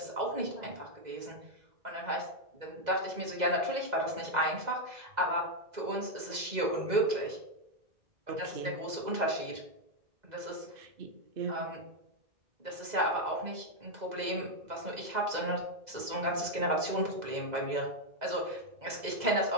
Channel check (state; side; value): late; left; 2.0 ms